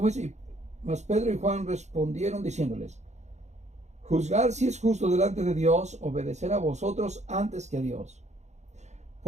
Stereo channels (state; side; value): late; left; 0.33 ms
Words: es? Mas Pedro y Juan respondieron diciéndoles, juzgar si es justo delante de Dios, obedecer a vosotros antes que a Dios.